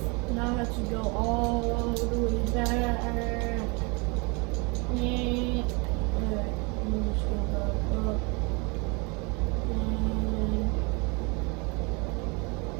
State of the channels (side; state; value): left; quieter; 29.8 dB